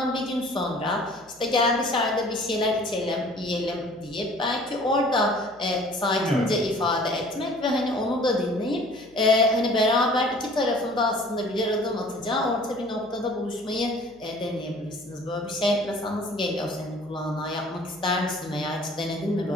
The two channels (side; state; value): left; noise; hum, 30 dB below the sound